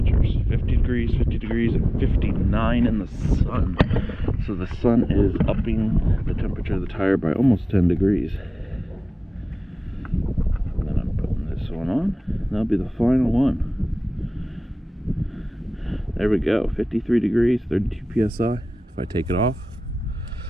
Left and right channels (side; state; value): both; normal; correlation 0.98